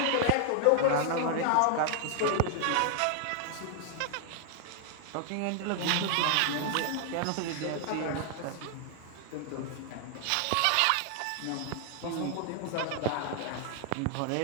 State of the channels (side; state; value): both; different; correlation 0.00